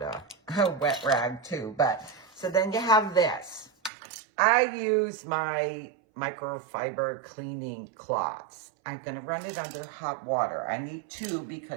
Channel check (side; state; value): left; drops out; at 3.9 s